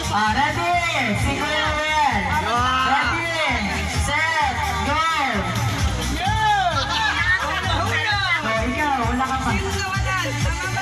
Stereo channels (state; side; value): identical; both; correlation 1.00